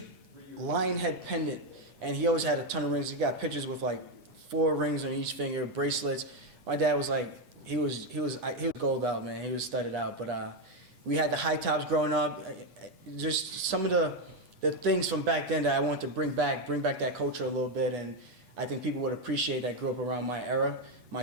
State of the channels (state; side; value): late; left; 8.2 ms